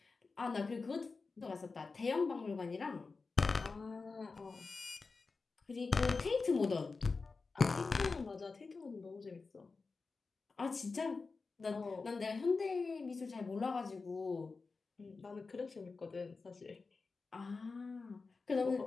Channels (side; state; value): right; quieter; 4.2 dB